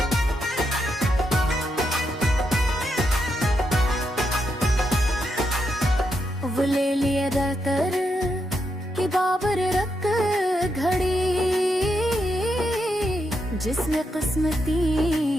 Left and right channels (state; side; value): normal; both; correlation 0.82